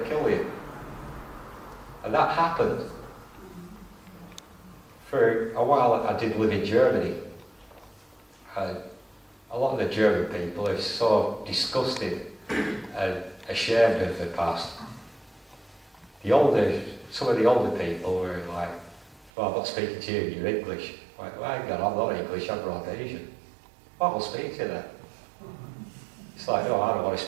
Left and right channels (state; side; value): drops out; left; at 19.3 s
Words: kill you. And that happened. For a while, I did live in Germany. And a lot of the German people are so disgusted and ashamed of the past. Some of the older people were like, well, I'm not speaking to you, you're English. I'm like, well, hang on, I'm not English, I'm Rhodesian. Well, I'll speak to you then. It's like, no, I don't want to